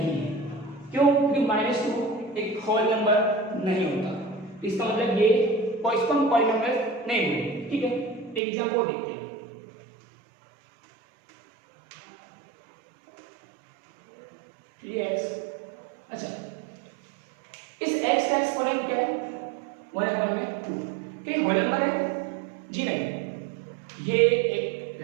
है। क्यों? क्योंकि -2 एक होल नंबर नहीं होता, तो इसका मतलब ये इसको हम पॉलिनोमियल नहीं बोलेंगे, ठीक है। एग्जांपल देखते हैं, अच्छा इस x का एक्सपोनेंट क्या है 1/2, क्या होल नंबर है? जी नहीं, ये एक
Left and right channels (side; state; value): left; drops out; at 8.4 s